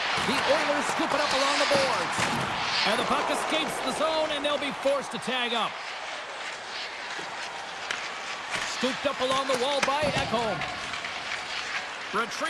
The Oilers scoop it up along the boards. And the puck escapes the zone, and they'll be forced to tag up. Scooped up along the wall by Ekholm.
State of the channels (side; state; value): both; identical; correlation 1.00